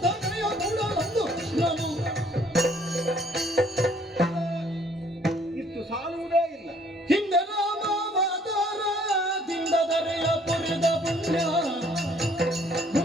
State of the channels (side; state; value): both; normal; correlation 0.61